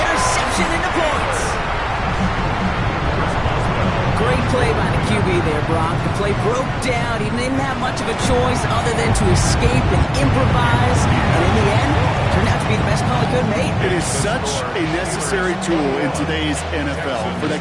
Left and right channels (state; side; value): identical; both; correlation 1.00